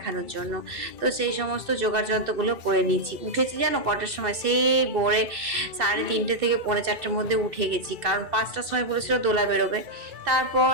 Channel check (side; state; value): left; late; 2.6 ms